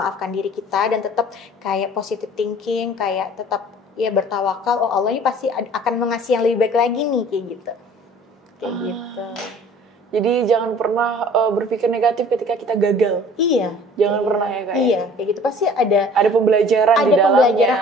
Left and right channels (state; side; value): normal; both; correlation 0.49